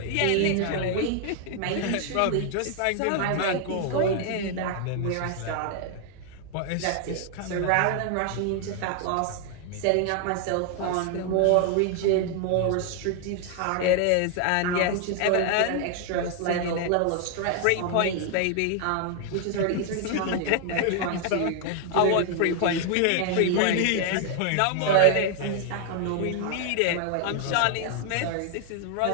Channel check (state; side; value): different; both; correlation 0.00